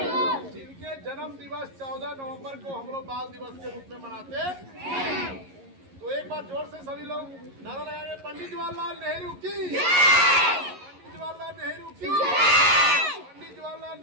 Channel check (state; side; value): late; left; 11 ms